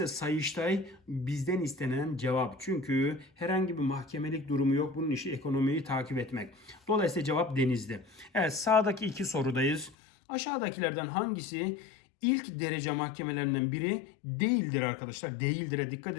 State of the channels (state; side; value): drops out; right; at 10.0 s